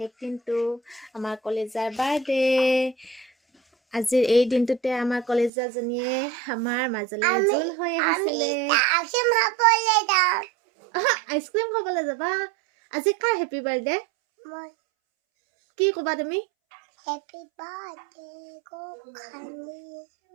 দিনটো আমাৰ কলেজৰ বাৰ্থডে। আজিৰ এই দিনটোতে আমাৰ কলেজৰজনীয়ে আমাৰ মাজলৈ জোল হৈ আহিছিলে। আইচক্ৰীম খাবলৈ যাবা? আজি কাৰ হেপী বাৰ্থডে? কি ক'বা তুমি? Happy birthday, Gokhani.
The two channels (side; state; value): left; drops out; at 5.5 s